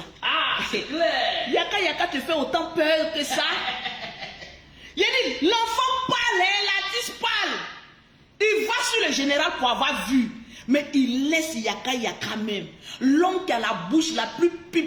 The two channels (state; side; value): identical; both; correlation 1.00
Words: Ah, c'est clair. Yaka Yaka te fait autant peur que ça. Il dit, l'enfant parle, l'artiste parle. Il va sur le général pour avoir vu. Mais il laisse Yaka Yaka même. L'homme qui a la bouche la plus